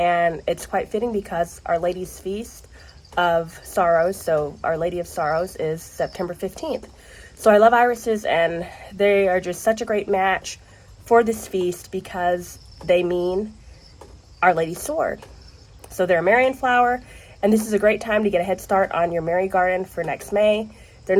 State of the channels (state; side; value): identical; both; correlation 1.00